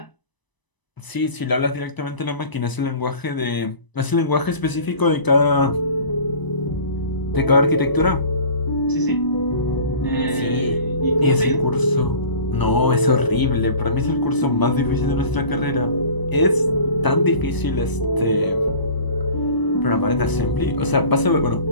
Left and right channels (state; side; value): late; right; 1.0 ms